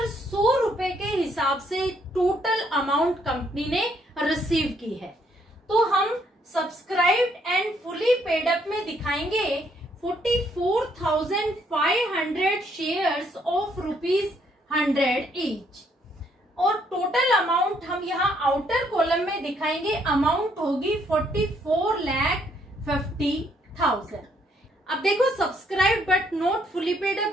100 रुपए के हिसाब से टोटल अमाउंट कंपनी ने रिसीव की है। तो हम subscribed and fully paid up में दिखाएंगे 44,500 शेयर्स ऑफ ₹100 ईच, और टोटल अमाउंट हम यहाँ आउटर कॉलम में दिखाएंगे, अमाउंट होगी 44,50,000। अब देखो, subscribe but not fully paid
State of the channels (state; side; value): normal; both; correlation 0.70